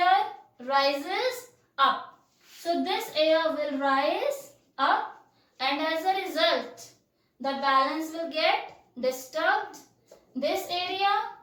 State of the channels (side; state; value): both; identical; correlation 1.00